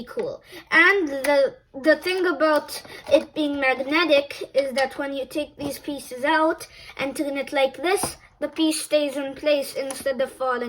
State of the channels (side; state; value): both; identical; correlation 1.00